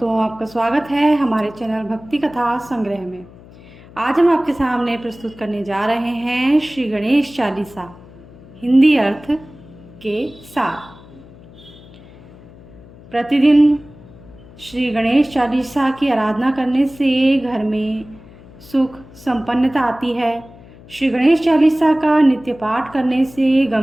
आपका स्वागत है हमारे चैनल भक्ति कथा संग्रह में। आज हम आपके सामने प्रस्तुत करने जा रहे हैं श्री गणेश चालीसा हिंदी अर्थ के साथ। प्रतिदिन श्री गणेश चालीसा की आराधना करने से घर में सुख संपन्नता आती है। श्री गणेश चालीसा का नित्य पाठ करने से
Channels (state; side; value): noise; left; hum, 21 dB below the sound